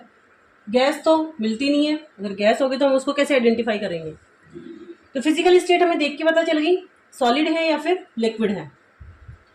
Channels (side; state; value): both; identical; correlation 1.00